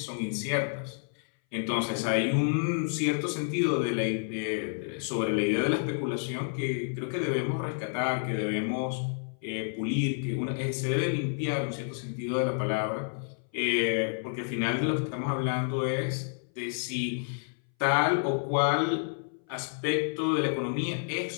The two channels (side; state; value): right; silent; 58 dB below the other